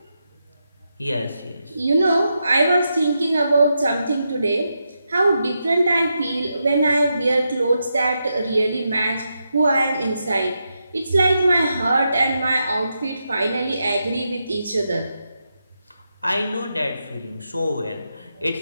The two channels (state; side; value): inverted; both; correlation -0.85